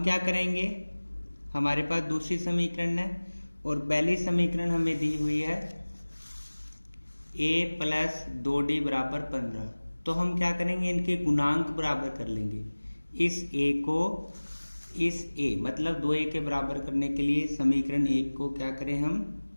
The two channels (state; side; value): inverted; both; correlation -1.00